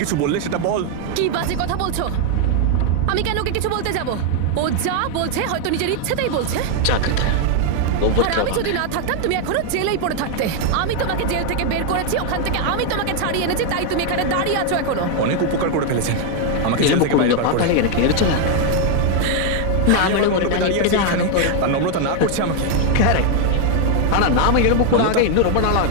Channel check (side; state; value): both; different; correlation 0.00